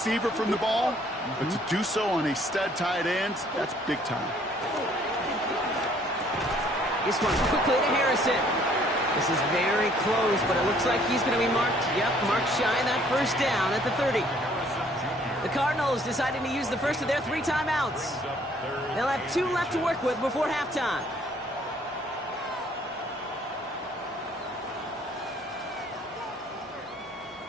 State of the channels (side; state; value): both; normal; correlation 0.61